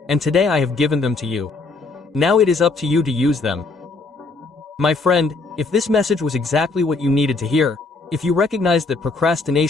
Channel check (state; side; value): quieter; right; 3.7 dB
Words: and today I have given them to you. Now it is up to you to use them. My friend, if this message was exactly what you needed to hear, if you recognize that